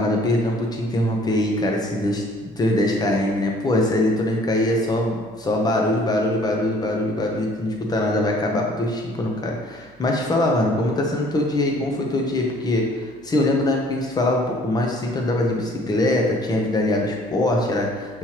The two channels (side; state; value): right; noise; hum, 29 dB below the sound